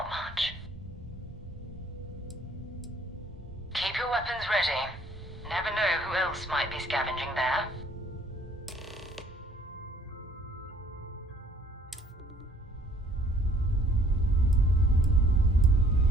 much. Keep your weapons ready. Never know who else might be scavenging there.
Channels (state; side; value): normal; both; correlation 0.59